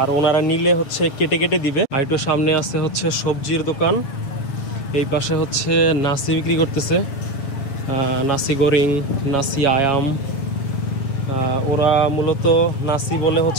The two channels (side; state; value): right; late; 7.3 ms